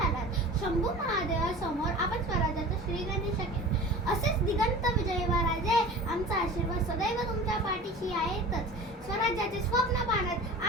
शंभू महादेवासमोर आपण स्वराज्याचं श्रीगणेश केलं. असेच दिगंत विजयी व्हा राजे. आमचा आशीर्वाद सदैव तुमच्या पाठीशी आहेतच. स्वराज्याचे स्वप्न पाहण्यात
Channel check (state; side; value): normal; both; correlation 0.37